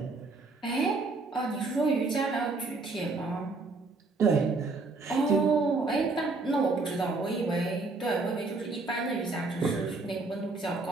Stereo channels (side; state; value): left; quieter; 3.6 dB